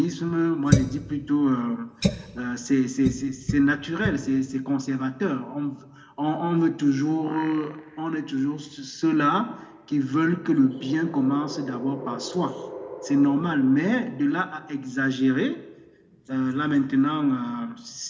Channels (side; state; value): both; identical; correlation 1.00